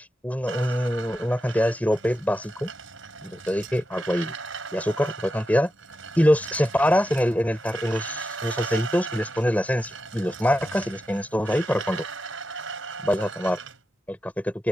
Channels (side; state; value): both; normal; correlation 0.89